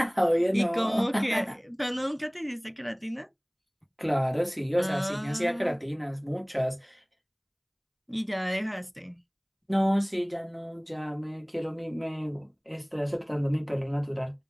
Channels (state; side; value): identical; both; correlation 1.00